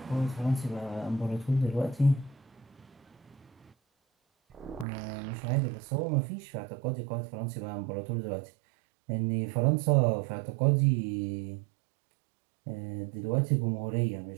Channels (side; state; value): left; drops out; at 4.9 s